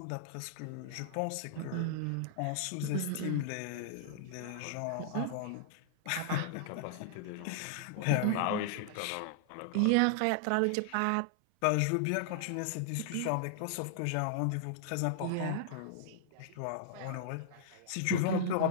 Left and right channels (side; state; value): both; different; correlation -0.01